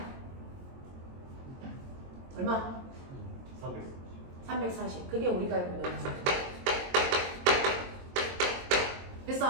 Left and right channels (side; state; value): left; late; 22 ms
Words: 얼마? 340. 그게 우리가 알고 있는 음속.